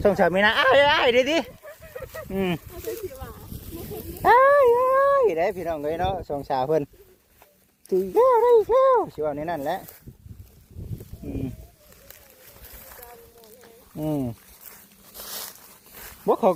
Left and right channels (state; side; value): identical; both; correlation 1.00